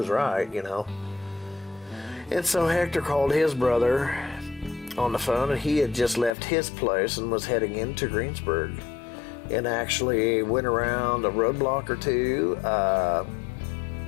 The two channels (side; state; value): right; drops out; at 6.4 s